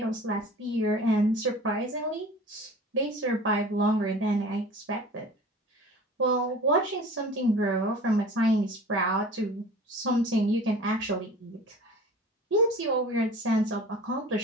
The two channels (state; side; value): normal; both; correlation 0.41